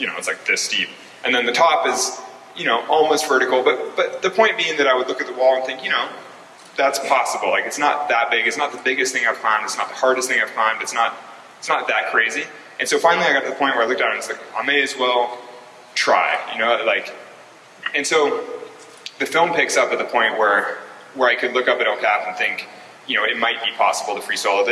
know, it's like this steep. And then the top is you know, almost vertical, but the point being that I would look at the wall and think, you know, that's possible. Like, it's not that big. It's not the biggest thing I've climbed. It's not the hardest thing I've climbed. It's not that crazy. And so finally I got to the point where I looked at it and was like, I may as well try, you know, like, and so the film picks up at the point where I could look up at El Cap and think, you know, it might be possible to free solo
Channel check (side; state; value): both; identical; correlation 1.00